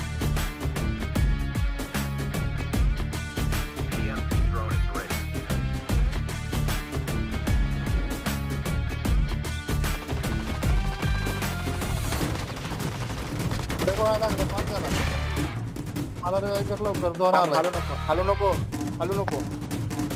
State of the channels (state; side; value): identical; both; correlation 1.00